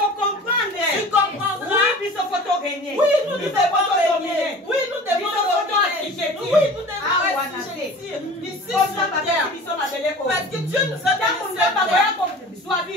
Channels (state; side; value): normal; both; correlation 0.41